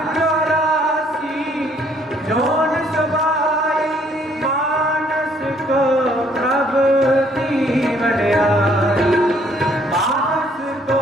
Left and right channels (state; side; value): normal; both; correlation 0.64